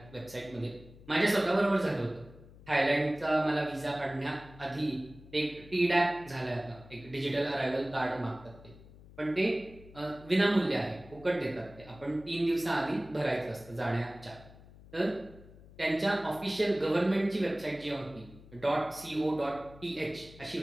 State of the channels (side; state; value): left; noise; hum, 20 dB below the sound